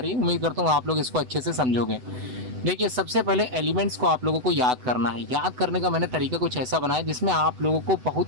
है। उम्मीद करता हूँ आप लोग इसको अच्छे से समझोगे। देखिए, सबसे पहले एलिमेंट्स को आप लोगों को याद करना है। याद करने का मैंने तरीका कुछ ऐसा बनाया जिसमें आप लोगों को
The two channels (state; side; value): late; left; 8.0 ms